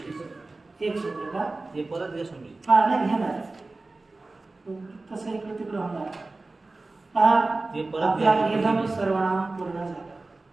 एक शब्द का? हे परत नाही घेणार, तसं इकडे तिकडे होणार. आपला इदम सर्वनाम पूर्ण झाला.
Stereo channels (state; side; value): quieter; left; 3.3 dB